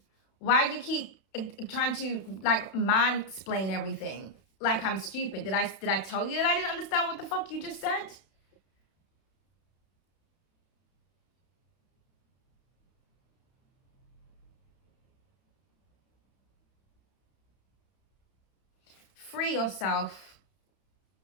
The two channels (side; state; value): right; late; 31 ms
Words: Why do you keep trying to like mansplain everything? Like I'm stupid. Did I tell you that I didn't understand what the fuck you just said? Free yourself.